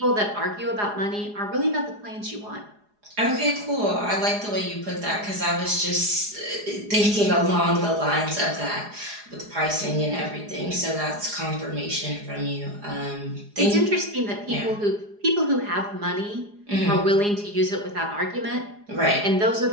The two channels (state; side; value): late; left; 4.8 ms